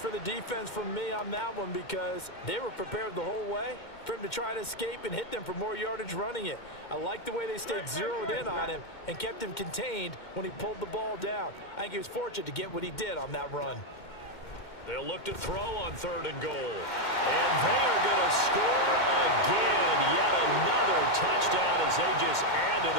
the defense from me on that one because they were prepared the whole way for him to try to escape and hit them for more yardage running it. I like the way they stayed zeroed in on him and kept him contained when he pulled the ball down. I think he was fortunate to get what he did on that run. They'll look to throw on 3rd and goal. And they are going to score again. Yet another touchdown as they just add to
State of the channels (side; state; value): right; late; 2.1 ms